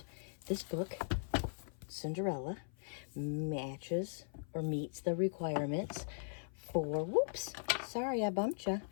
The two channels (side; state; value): right; silent; 51 dB below the other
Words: This book, Cinderella, matches or meets the requirements for, whoops, sorry I bumped you.